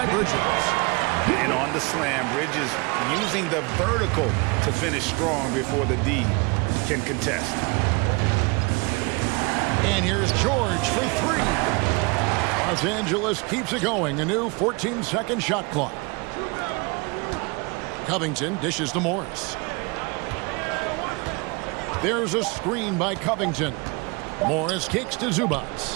Bridges. And on the slam, Bridges using the vertical to finish strong before the D can contest. And here's George for 3. Los Angeles keeps it going. A new 14-second shot clock. Covington dishes to Morris. There's a screen by Covington. Morris kicks to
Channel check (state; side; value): quieter; left; 28.0 dB